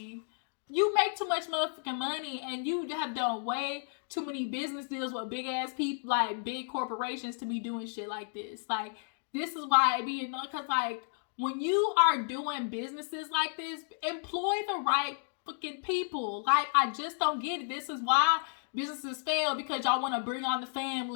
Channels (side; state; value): right; silent; digital silence